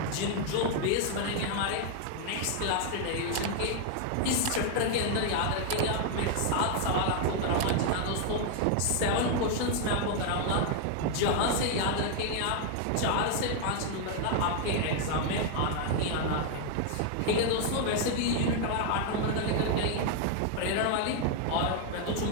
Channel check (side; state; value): both; different; correlation 0.00